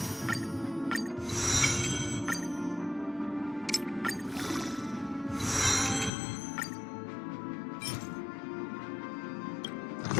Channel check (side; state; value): right; drops out; at 6.1 s